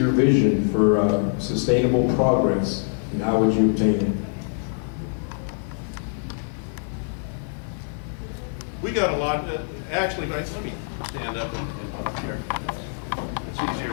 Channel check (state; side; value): silent; right; digital silence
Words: vision for sustainable progress, and how would you obtain it? We got a lot, actually, let me stand up and talk here. It's